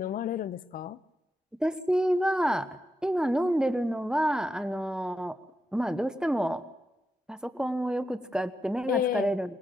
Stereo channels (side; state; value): both; normal; correlation 0.87